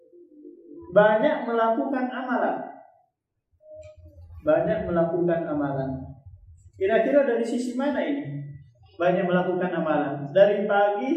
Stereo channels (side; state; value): both; identical; correlation 1.00